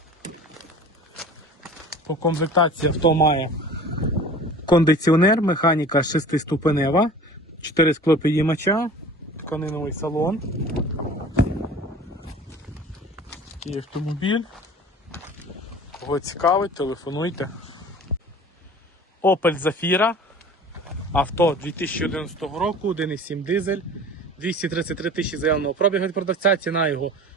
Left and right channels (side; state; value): both; normal; correlation 0.42